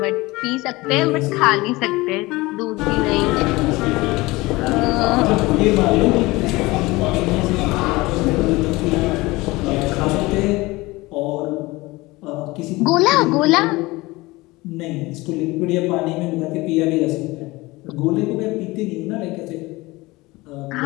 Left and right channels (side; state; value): right; quieter; 21.4 dB